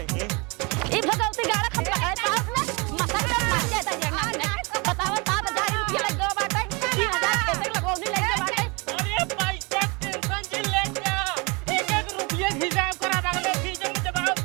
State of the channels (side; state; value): left; quieter; 28.6 dB